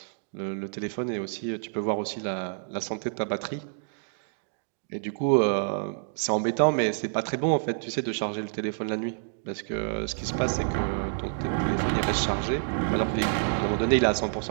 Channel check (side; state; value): left; silent; digital silence